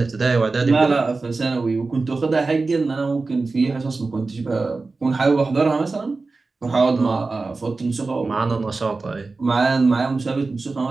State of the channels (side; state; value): left; quieter; 3.8 dB